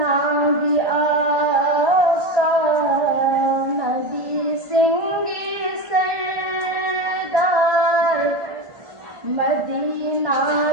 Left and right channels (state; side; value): late; left; 1.5 ms